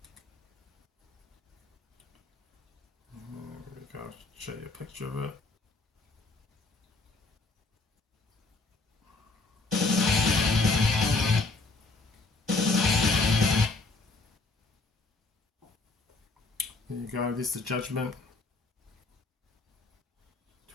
I'll show you a picture of it. There you go, there's The Judgment,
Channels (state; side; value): quieter; right; 3.4 dB